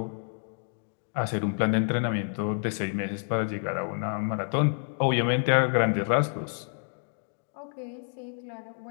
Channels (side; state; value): right; silent; 59 dB below the other